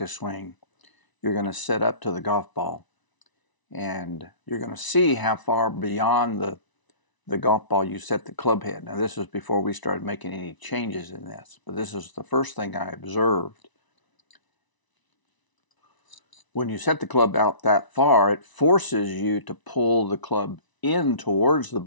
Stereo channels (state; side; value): late; right; 1.0 ms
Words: swing, you're going to set up to the golf ball, and you're going to see how far beyond the golf ball you set the club head. Now, this was before we started making any changes in this, but this is the first thing I observed. When you set the club out that far, it forces you to pull the club in towards the